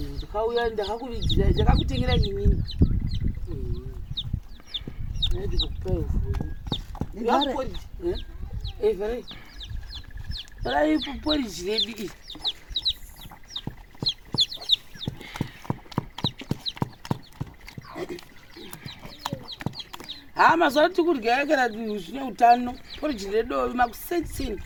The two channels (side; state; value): both; identical; correlation 1.00